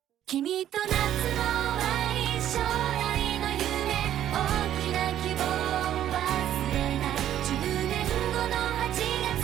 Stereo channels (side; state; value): left; quieter; 11.4 dB